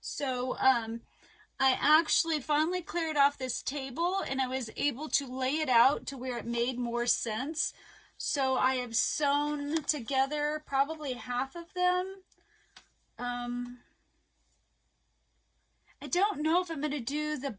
I actually finally cleared off this table, and I was able to lay it out to where it made more sense. So I have sewn together probably half of them. I don't know if I'm going to do the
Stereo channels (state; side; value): identical; both; correlation 1.00